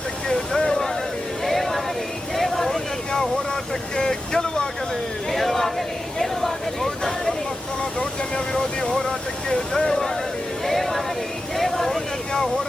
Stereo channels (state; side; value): normal; both; correlation 0.91